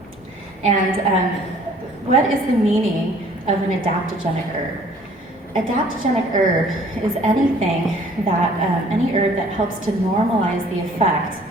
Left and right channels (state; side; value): normal; both; correlation 0.55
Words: And what is the meaning of an adaptogenic herb? Adaptogenic herb is anything that, any herb that helps to normalize the effect